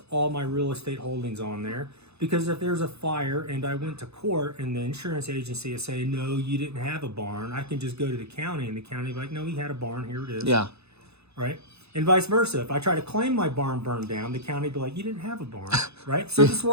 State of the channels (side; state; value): left; late; 0.80 ms